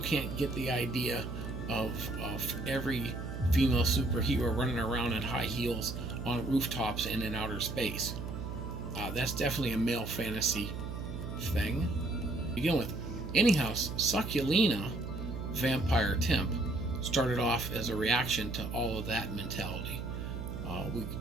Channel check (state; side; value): noise; right; hum, 6 dB below the sound